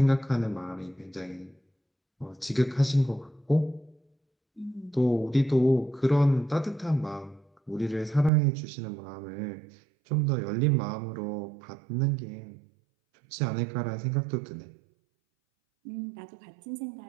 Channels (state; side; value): drops out; left; at 8.3 s